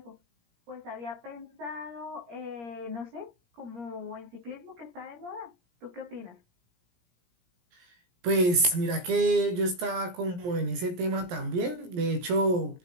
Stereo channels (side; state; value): left; late; 17 ms